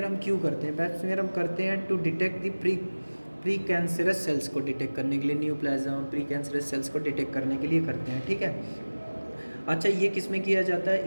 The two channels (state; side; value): inverted; both; correlation -1.00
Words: हम क्यों करते हैं? पैप स्मीयर हम करते हैं to detect the pre cancerous cells को डिटेक्ट करने के लिए, न्यूप्लाज्म प्री कैंसरस सेल्स को डिटेक्ट करने के लिए करते हैं, ठीक है। अच्छा, ये किस में किया जाता